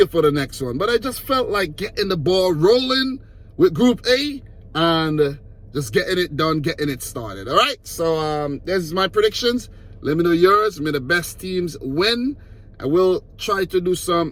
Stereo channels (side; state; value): both; identical; correlation 1.00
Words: for the next one. But I just felt like getting the ball rolling with Group A and just getting it done, getting it started. All right, so there's my predictions. Let me know yours. May the best teams win. I will try to do